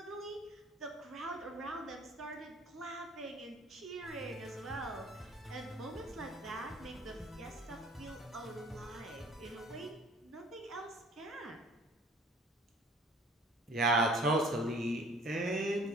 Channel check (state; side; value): normal; both; correlation 0.52